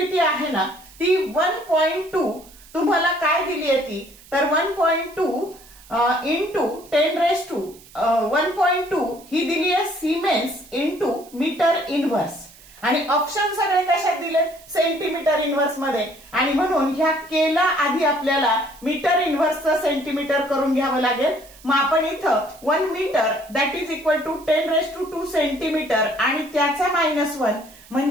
आहे ना ती 1.2 तुम्हाला काय दिली आहे ती तर 1.2 इंटू 10⁻1.2 ही दिली आहे सिमेन्स इंटू मीटर इनव्हर्स। आणि ऑप्शन सगळे कशात दिले? सेंटीमीटर इनव्हर्स मध्ये। आणि म्हणून ह्या केला आधी आपल्याला मीटर इनव्हर्सचं सेंटीमीटर करून घ्यावं लागेल। मग आपण इथं 1 metre that is equal to 10⁻2 centimetre आणि त्याचा -1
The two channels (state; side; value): noise; right; hiss, 23 dB below the sound